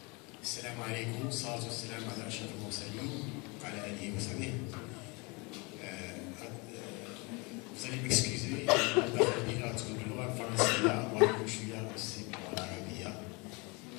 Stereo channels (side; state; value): right; quieter; 28.5 dB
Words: السلام عليكم، والصلاة والسلام على أشرف المرسلين وعلى آله وصحبه. Vous allez m'excuser,